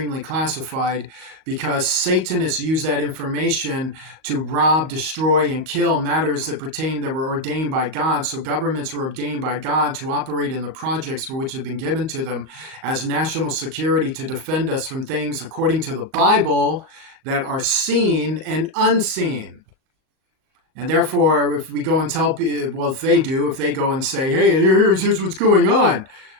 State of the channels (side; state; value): left; late; 37 ms